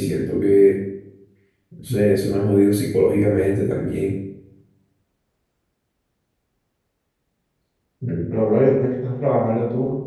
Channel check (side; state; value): both; identical; correlation 1.00